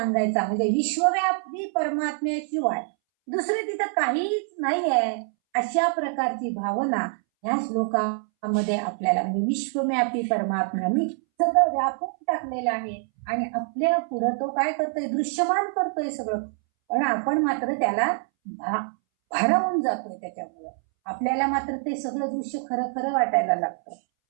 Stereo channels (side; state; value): left; silent; 61 dB below the other